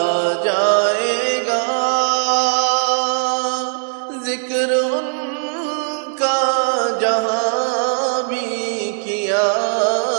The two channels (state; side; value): silent; left; digital silence